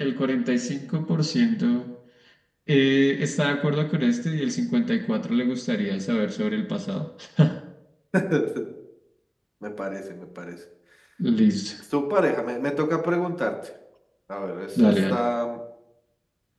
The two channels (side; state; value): both; identical; correlation 1.00